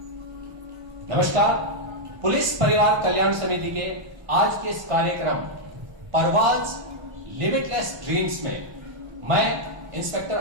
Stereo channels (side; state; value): left; late; 1.5 ms